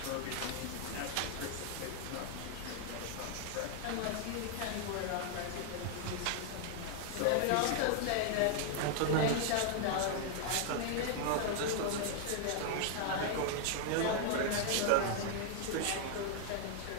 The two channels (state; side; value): different; both; correlation 0.00